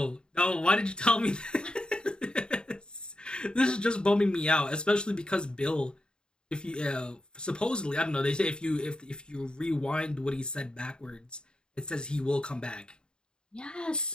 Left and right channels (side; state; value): right; late; 0.049 ms